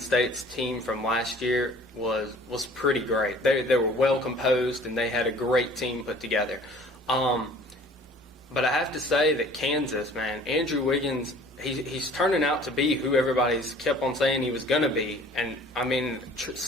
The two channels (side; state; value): both; normal; correlation 0.50